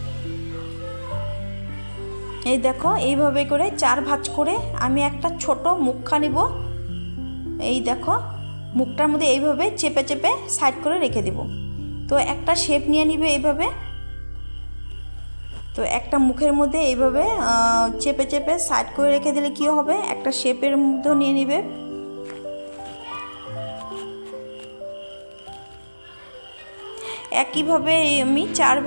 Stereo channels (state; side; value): inverted; both; correlation -1.00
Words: এই দেখো এইভাবে করে 4 ভাঁজ করে আমি একটা ছোট মুখা নিব। এই দেখো মুখটার মধ্যে এইভাবে চেপে চেপে সাইড করে রেখে দেব। তো একটা শেপ নিয়ে নিবে এইভাবে। তো একটা মুখের মধ্যে এইভাবে চেপে চেপে সাইড করে রেখে দিলে কি হবে, একটা শেপের মধ্যে নিয়ে নিবে। একইভাবে আমি 4